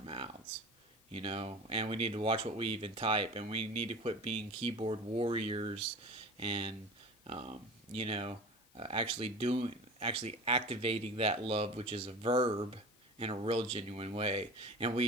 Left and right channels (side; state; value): left; noise; hiss, 29 dB below the sound